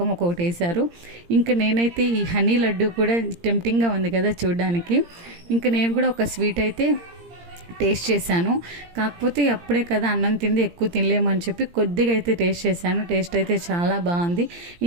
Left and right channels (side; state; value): left; late; 17 ms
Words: ఒక్కొక్కటి వేశారు. ఇంకా నేనైతే ఈ హనీ లడ్డు కూడా టెంప్టింగ్గా ఉంది కదా చూడడానికి. ఇంకా నేను కూడా ఒక స్వీట్ అయితే టేస్ట్ చేశాను. కాకపోతే అప్పుడే కదా అన్నం తింది, ఎక్కువ తినలేమని చెప్పి కొద్దిగా అయితే టేస్ట్ చేశాను. టేస్ట్ అయితే చాలా బాగుంది.